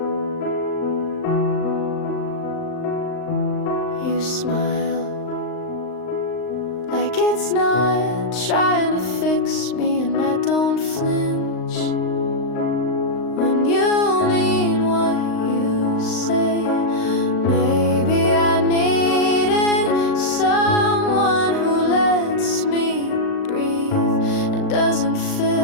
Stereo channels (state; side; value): late; right; 39 ms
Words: You smile like it's not trying to fix me, and I don't flinch when you mean what you say. Maybe I needed someone who lets me breathe and doesn't